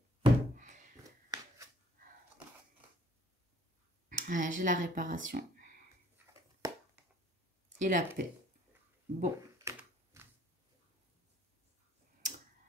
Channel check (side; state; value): both; normal; correlation 0.59